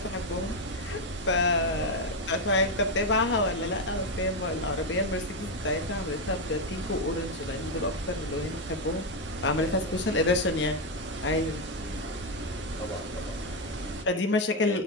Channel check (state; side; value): normal; both; correlation 0.06